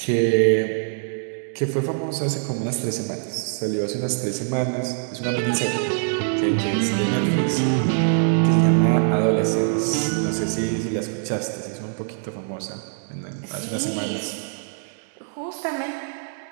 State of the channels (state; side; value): silent; left; digital silence